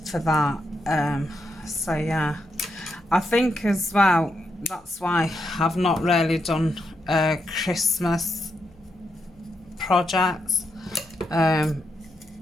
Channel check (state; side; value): noise; left; hum, 30 dB below the sound